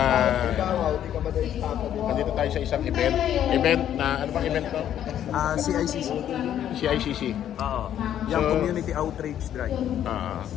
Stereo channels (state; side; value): quieter; right; 10.6 dB